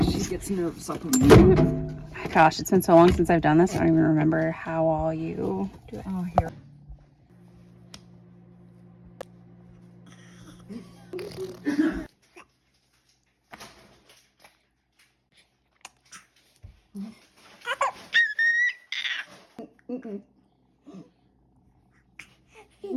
she gets nervous up in the Gosh, it's been so long since I've done this. I don't even remember how all you do it. Oh, here.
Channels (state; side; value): identical; both; correlation 1.00